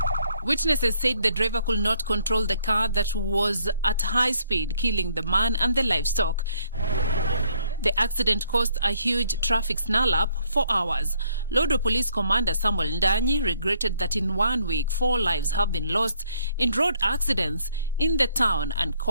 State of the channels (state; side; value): inverted; both; correlation -0.66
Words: Witnesses said the driver could not control the car that was at high speed, killing the man and the livestock. The accident caused a huge traffic snarl-up for hours. Lodwar Police Commander Samuel Ndanyi regretted that in 1 week, 4 lives have been lost in road accidents in the town and